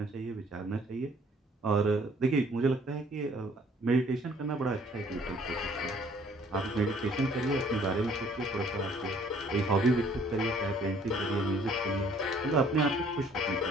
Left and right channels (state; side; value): normal; both; correlation 0.59